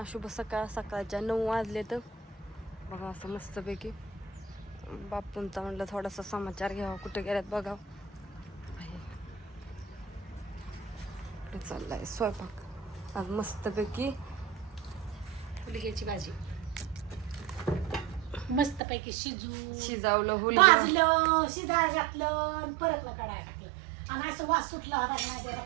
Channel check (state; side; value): drops out; left; at 18.8 s